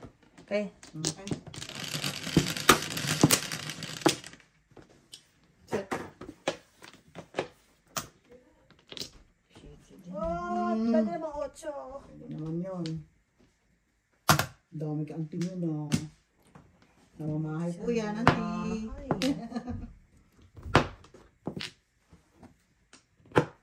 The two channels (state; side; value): identical; both; correlation 1.00